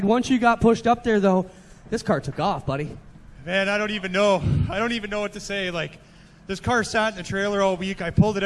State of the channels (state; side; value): identical; both; correlation 1.00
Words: Once you got pushed up there, though, this car took off, buddy. Man, I don't even know what to say. Like, this car sat in the trailer all week. I pulled it